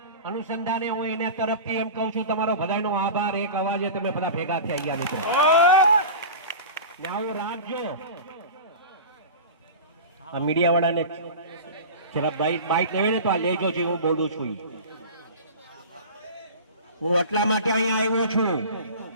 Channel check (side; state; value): both; inverted; correlation -0.33